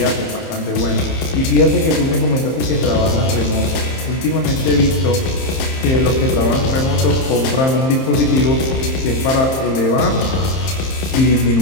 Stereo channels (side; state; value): right; late; 30 ms